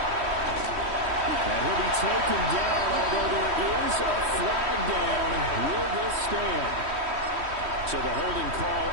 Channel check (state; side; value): late; left; 3.1 ms